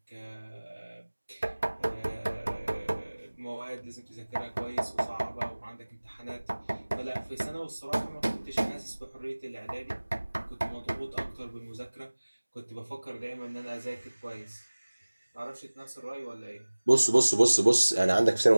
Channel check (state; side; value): inverted; both; correlation -1.00